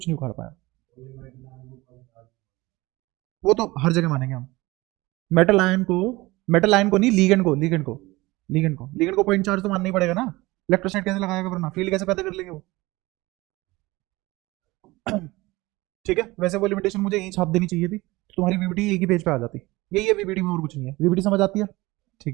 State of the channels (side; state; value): left; quieter; 20.9 dB